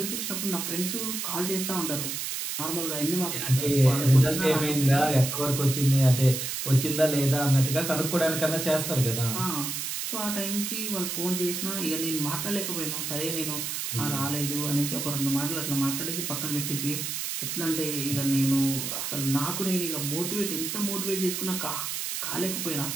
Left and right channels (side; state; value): right; noise; hiss, 3 dB below the sound